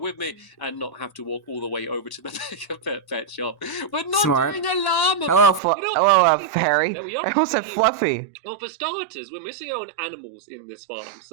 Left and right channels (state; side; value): drops out; left; at 5.6 s